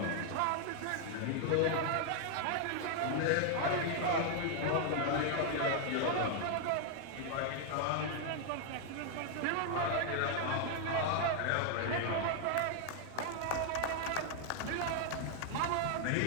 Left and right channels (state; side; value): different; both; correlation 0.00